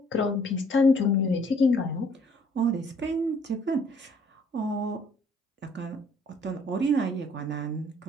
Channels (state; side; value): normal; both; correlation 0.60